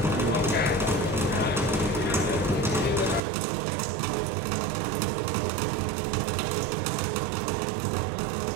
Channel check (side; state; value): left; drops out; at 3.2 s